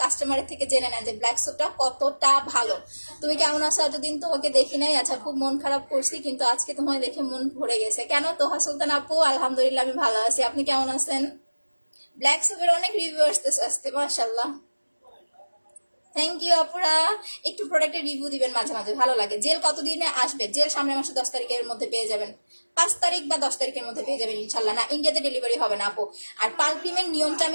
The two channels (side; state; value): both; inverted; correlation -1.00